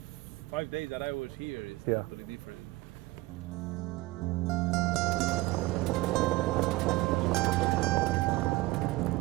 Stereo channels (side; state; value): left; quieter; 20.3 dB